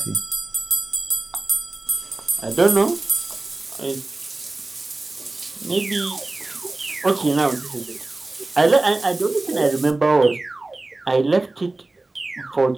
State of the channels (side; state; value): left; quieter; 3.1 dB